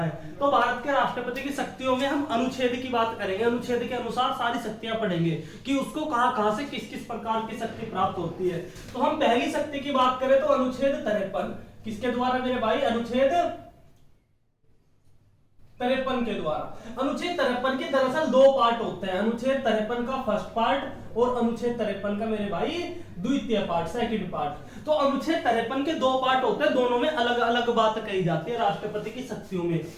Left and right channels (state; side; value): identical; both; correlation 1.00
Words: तो भारत के राष्ट्रपति की शक्तियों में हम अनुच्छेद की बात करेंगे। अनुच्छेद के अनुसार सारी शक्तियां पढ़ेंगे कि उसको कहां से किस किस प्रकार की शक्ति प्राप्त होती है। तो हम पहली शक्ति की बात करें तो अनुच्छेद 53 किसके द्वारा मेरे भाई? अनुच्छेद 53 के द्वारा। अनुच्छेद 53 के दरअसल दो पार्ट होते हैं। अनुच्छेद 53 का फर्स्ट पार्ट और अनुच्छेद 53 का मेरे भाई द्वितीय पार्ट, सेकंड पार्ट। तो अनुच्छेद 53 के दो पार्ट होते हैं, दोनों में अलग अलग बात कही जाती है राष्ट्रपति की शक्तियों में।